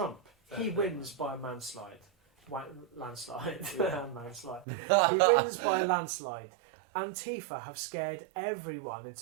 he wins by a landslide. Landslide. Landslide. He wins by a landslide. Antifa have scared everyone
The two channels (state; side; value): drops out; left; at 4.7 s